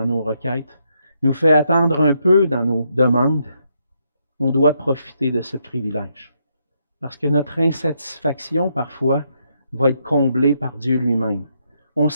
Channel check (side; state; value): both; inverted; correlation -0.77